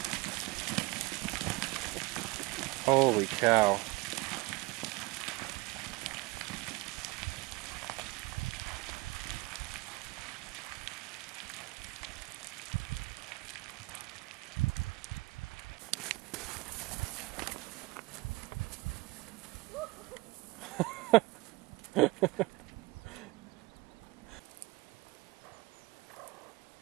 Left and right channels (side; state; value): left; quieter; 23.4 dB